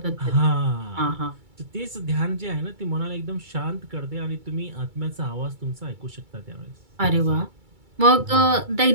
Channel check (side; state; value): left; late; 2.3 ms